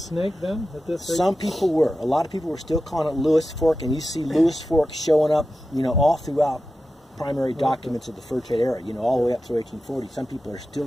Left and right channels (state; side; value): normal; both; correlation 0.92